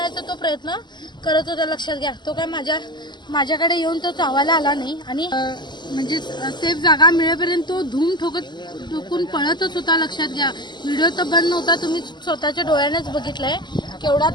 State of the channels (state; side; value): late; right; 0.21 ms